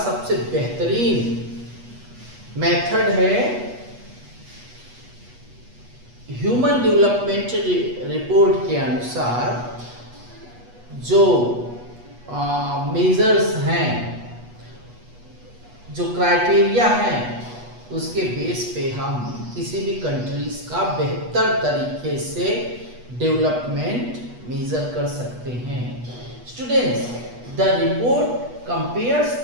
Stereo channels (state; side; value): late; left; 8.2 ms